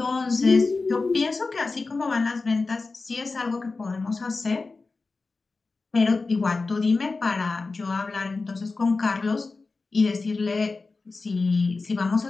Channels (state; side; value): quieter; right; 3.8 dB